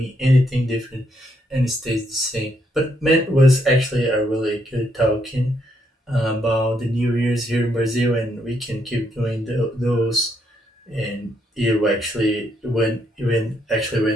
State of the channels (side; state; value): both; normal; correlation 0.75